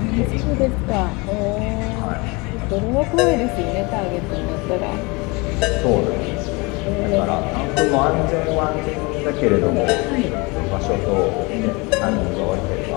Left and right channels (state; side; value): quieter; right; 26.8 dB